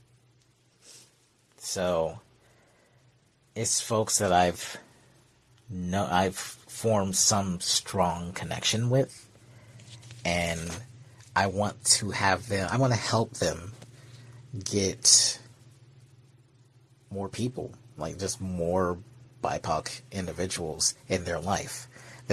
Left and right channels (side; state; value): both; identical; correlation 1.00